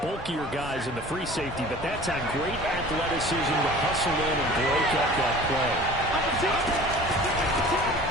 bulkier guys in the free safety, but that time great athleticism to hustle in and break up that play.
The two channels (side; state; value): both; normal; correlation 0.44